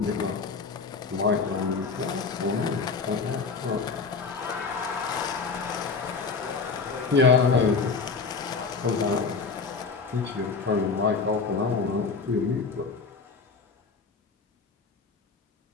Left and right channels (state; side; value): quieter; right; 4.7 dB